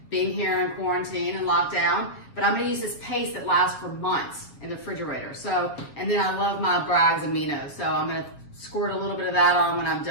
being here in quarantine and lockdown. But I'm going to use this paste that lasts for months in the refrigerator. So, and then I love my Bragg's aminos. So I'm going to squirt a little bit of that on when I'm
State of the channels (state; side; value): late; right; 7.4 ms